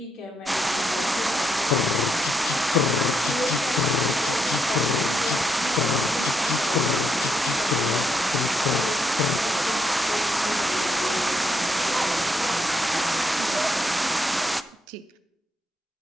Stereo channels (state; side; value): normal; both; correlation 0.79